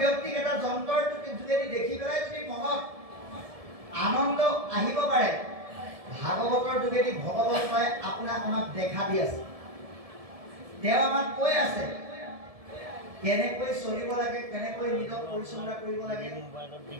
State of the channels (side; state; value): left; late; 1.7 ms